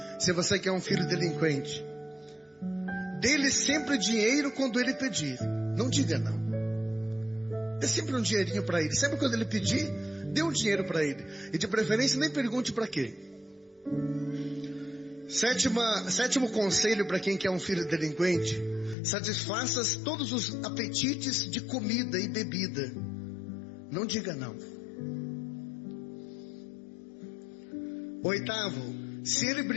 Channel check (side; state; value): right; drops out; at 18.9 s